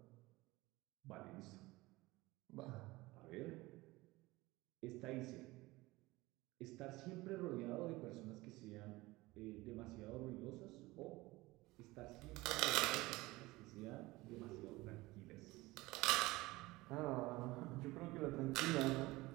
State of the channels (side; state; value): left; quieter; 20.4 dB